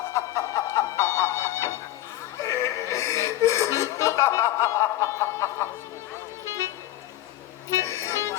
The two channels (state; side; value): quieter; right; 14.4 dB